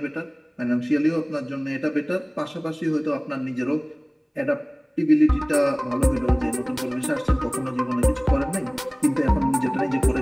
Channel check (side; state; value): both; identical; correlation 1.00